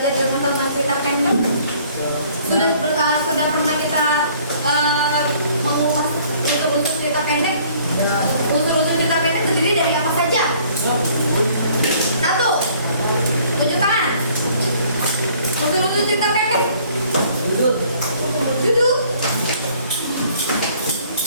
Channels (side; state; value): both; inverted; correlation -0.58